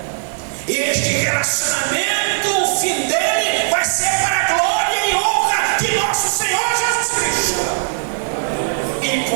Este relacionamento, o fim dele vai ser para a glória e honra de nosso Senhor Jesus Cristo. E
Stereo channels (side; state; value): left; silent; digital silence